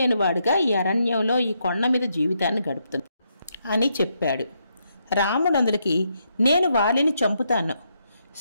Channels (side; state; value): both; inverted; correlation -0.79